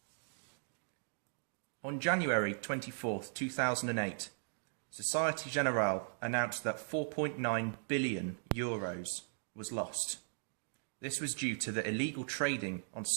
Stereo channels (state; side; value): silent; left; digital silence